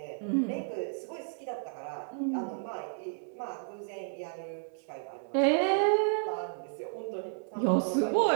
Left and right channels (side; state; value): left; silent; digital silence